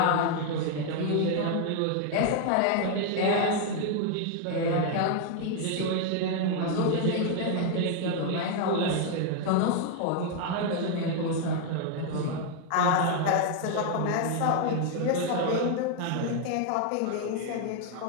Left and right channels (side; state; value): both; different; correlation 0.00